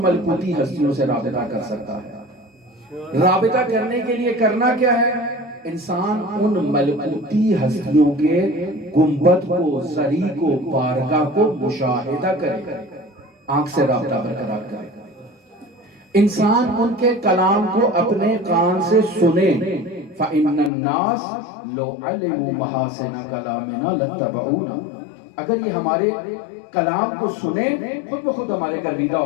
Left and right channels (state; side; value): drops out; right; at 20.7 s